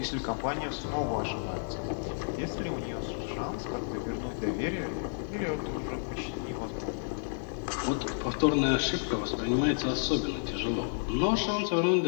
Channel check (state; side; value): silent; right; digital silence